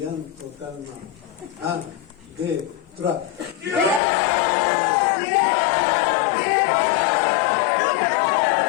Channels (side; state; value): right; drops out; at 4.0 s